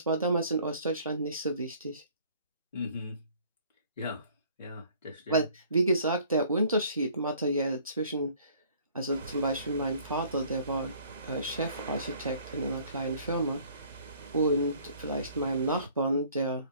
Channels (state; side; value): inverted; both; correlation -0.56